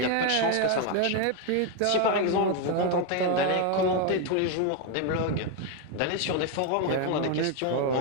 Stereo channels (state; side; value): different; both; correlation 0.02